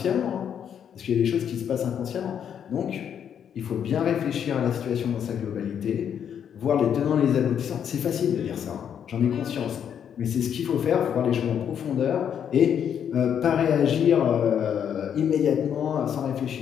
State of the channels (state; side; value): quieter; right; 8.5 dB